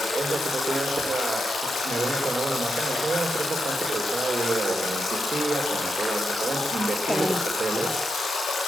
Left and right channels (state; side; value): normal; both; correlation 0.84